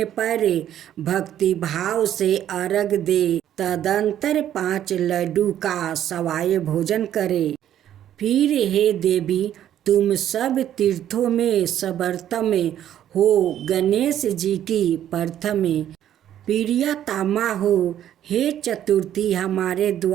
पर भक्ति भाव से अर्घ दे। तदंतर 5 लड्डू का सवाय भोजन करे। फिर हे देवी, तुम सब तीर्थों में सर्वोत्तम हो। गणेश जी की प्रथम प्रियतमा हो। हे चतुर्थी, हमारे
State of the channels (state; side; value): quieter; left; 11.1 dB